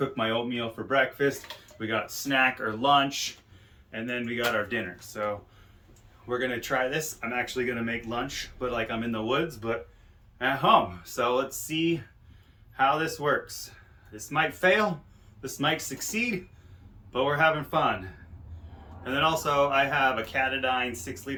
my oatmeal for breakfast. We got snack or lunch, and then we got our dinner. So we're gonna try this. I'm actually gonna make lunch, but like I'm in the woods, but at home. So let's see how this works. This might fail, this might succeed, but we're having fun. And then also I have a Catadine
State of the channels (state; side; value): identical; both; correlation 1.00